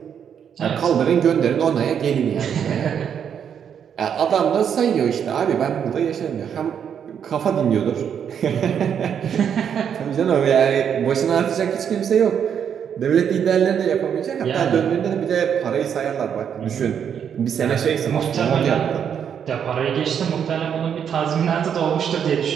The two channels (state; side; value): quieter; left; 8.1 dB